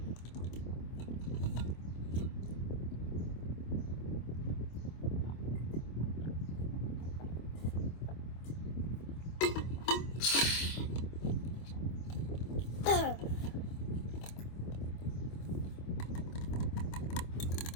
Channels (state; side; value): late; right; 25 ms